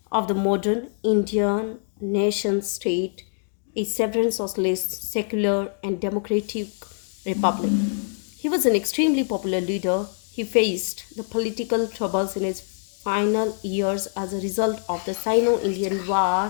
of the modern Indian nation state, a sovereign socialist, secular, and democratic republic. He was an extremely popular leader. He faced the political troubles in his final years as a result of the Sino-Indian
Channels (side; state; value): right; silent; digital silence